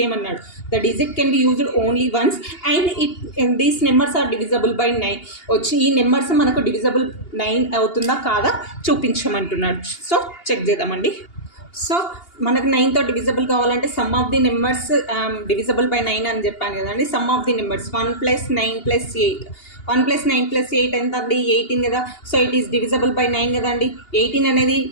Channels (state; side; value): late; right; 2.8 ms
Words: The digit can be used only once and these numbers are divisible by 9 వచ్చి ఈ నెంబర్స్ మనకు డివిజబుల్ 9 అవుతుందా కాదా చూపించమంటున్నాడు. సో చెక్ చేద్దామండి. సో మనకు 9తో డివిజబుల్ కావాలంటే sum of the numbers divisible by 9 అని చెప్పాను కదండి. సమ్ ఆఫ్ ది నెంబర్స్ 1 + 9 + 8, 1 + 9 + 8 ఎంత అండి? 18 కదా. So it is divisible by 9 కదండి. 18 అనేది